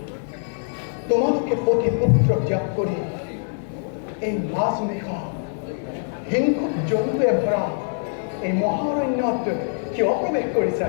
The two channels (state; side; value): silent; right; 63 dB below the other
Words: তোমালোকে পতি পুত্ৰ ত্যাগ কৰি এই মাছ নিশা হিংসুক জন্তুৱে ভৰা এই মহাৰণ্যত কিয় প্ৰৱেশ কৰিছা?